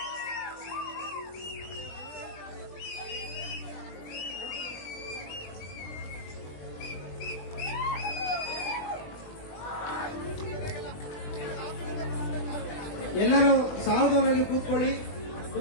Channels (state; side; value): late; right; 20 ms